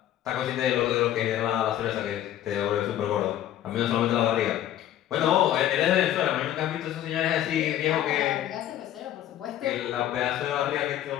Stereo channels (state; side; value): quieter; right; 12.0 dB